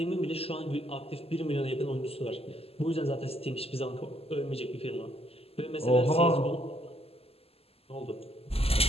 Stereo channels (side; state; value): right; late; 0.29 ms